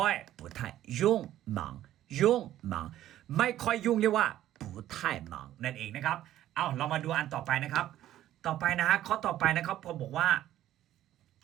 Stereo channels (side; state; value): left; quieter; 13.0 dB